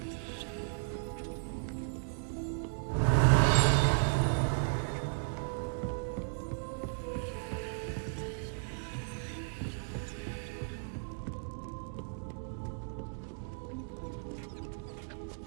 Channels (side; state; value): left; silent; digital silence